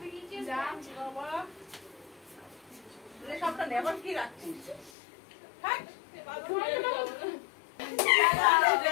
সবটা নেবার কি রাখছিস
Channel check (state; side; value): drops out; right; at 4.9 s